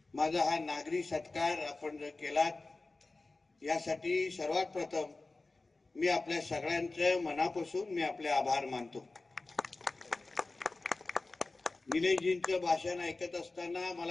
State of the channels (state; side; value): quieter; right; 3.4 dB